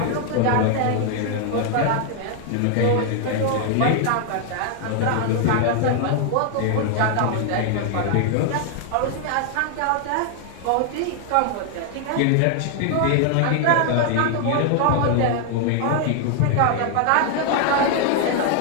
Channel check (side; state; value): both; different; correlation 0.00